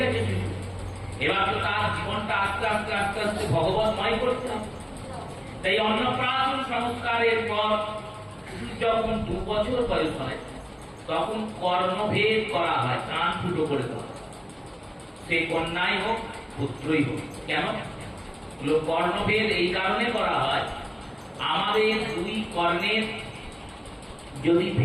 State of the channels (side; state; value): both; identical; correlation 1.00